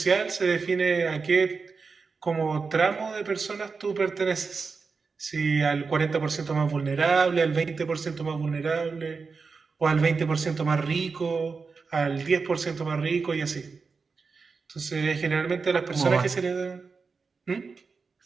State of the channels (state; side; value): quieter; left; 4.8 dB